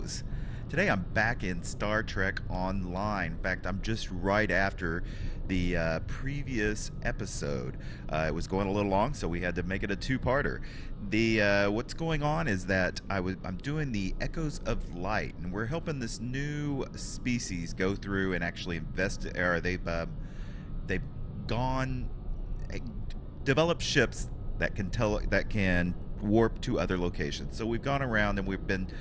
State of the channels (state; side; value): identical; both; correlation 1.00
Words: Today I'm back in Star Trek Online. In fact, I'm just right after the previous episode. It was going a little long, so we had to make it a two-parter. What's going on is that I'm doing the Echoes of Light, and we're helping this new species go through and actually they've developed ships that can warp to other locations. So we've gone around and we've been